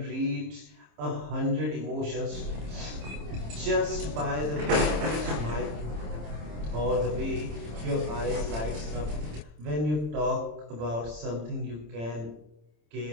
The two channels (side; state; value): left; late; 26 ms